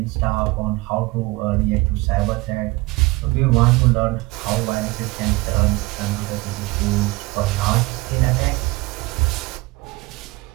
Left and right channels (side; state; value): left; quieter; 22.1 dB